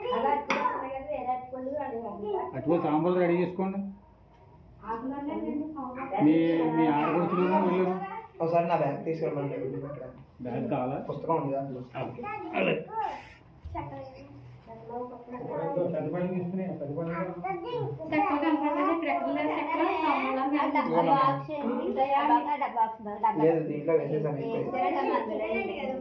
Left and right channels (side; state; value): both; identical; correlation 1.00